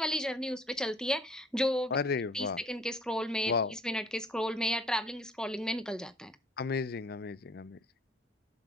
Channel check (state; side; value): normal; both; correlation 0.56